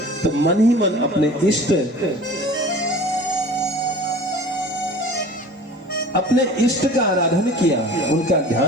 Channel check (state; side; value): normal; both; correlation 0.43